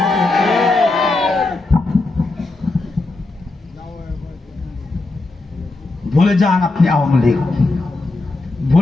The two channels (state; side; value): quieter; right; 3.2 dB